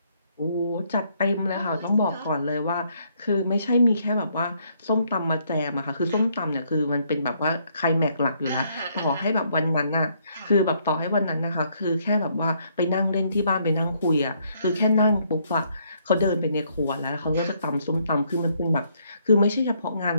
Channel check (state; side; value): inverted; both; correlation -0.70